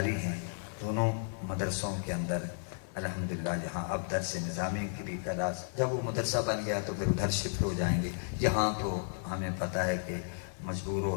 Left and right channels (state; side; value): silent; right; digital silence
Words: ہیں دونوں مدرسوں کے اندر الحمدللہ، جہاں اب درس نظامی کی بھی کلاس، جب وہ مدرسہ بن گیا تو پھر ادھر شفٹ ہو جائیں گے، یہاں تو ہمیں پتہ ہے کہ مجبور